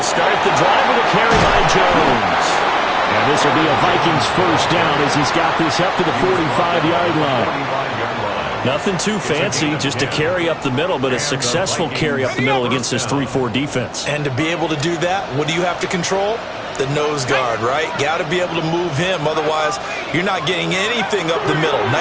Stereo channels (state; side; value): identical; both; correlation 1.00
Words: start the drive with a carry by Jones. And this will be a Vikings first down as he's got this up to the 45-yard line. Nothing too fancy, just a carry up the middle, but a successful carry up the middle against this 3-4 defense. And to be able to do that, what do you have to control? The nose guard, right? Got to be able to move him. Otherwise, you're not getting anything up the middle.